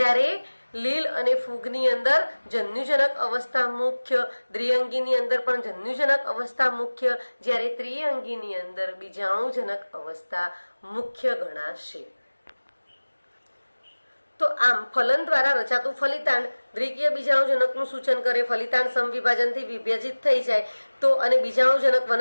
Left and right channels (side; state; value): both; inverted; correlation -1.00